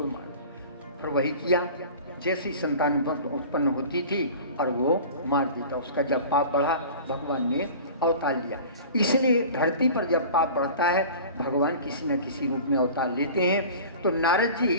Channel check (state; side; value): inverted; both; correlation -0.39